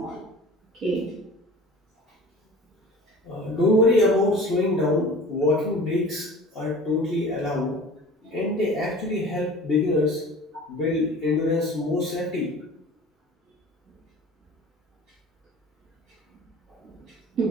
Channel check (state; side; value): normal; both; correlation 0.42